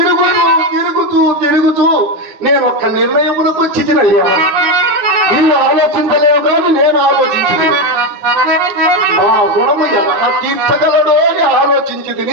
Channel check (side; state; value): left; late; 9.7 ms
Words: తిరుగుతూ నేను ఒక్క నిర్ణయమునకు వచ్చినయ్యా. నీవు ఆలోచించలేవు కానీ నేను ఆలోచించింది. మా గుణము ఎలా తీర్చగలడో అని